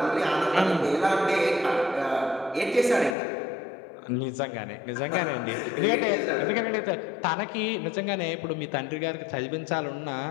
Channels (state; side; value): drops out; right; at 3.2 s